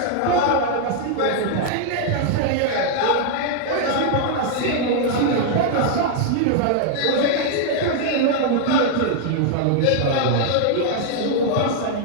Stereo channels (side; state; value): both; different; correlation -0.01